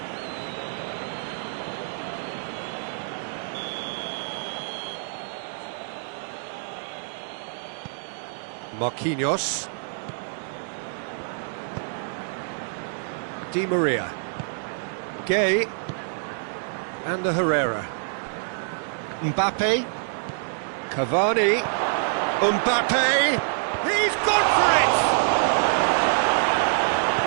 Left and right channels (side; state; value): left; silent; digital silence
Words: Marquinhos. Di Maria. Gueye. And Herrera. Mbappe. Cavani. Mbappe. He's gone for it!